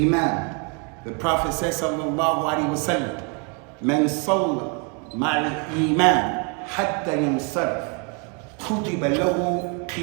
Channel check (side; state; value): left; quieter; 35.4 dB